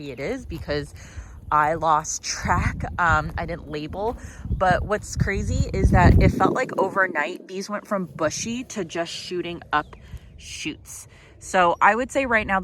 it is because I lost track. I didn't label, but what's crazy is that it felt like overnight these went from bushy to just shooting up shoots. So I would say right now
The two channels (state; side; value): identical; both; correlation 1.00